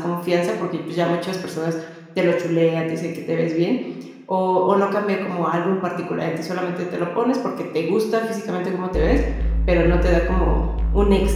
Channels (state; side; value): identical; both; correlation 1.00